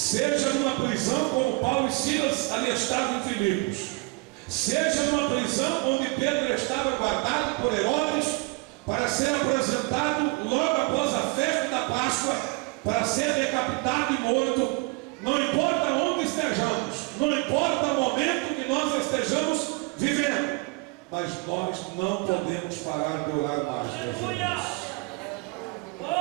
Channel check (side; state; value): left; quieter; 26.7 dB